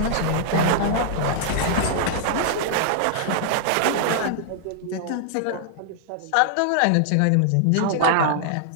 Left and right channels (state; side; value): different; both; correlation -0.01